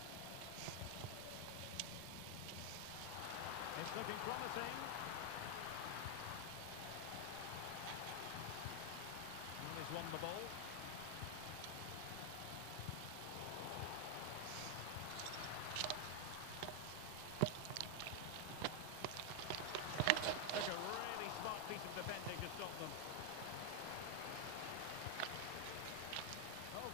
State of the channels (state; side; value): different; both; correlation 0.00